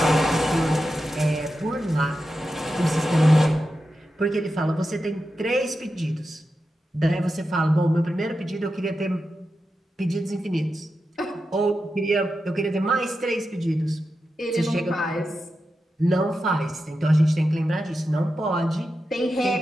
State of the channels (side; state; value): both; normal; correlation 0.90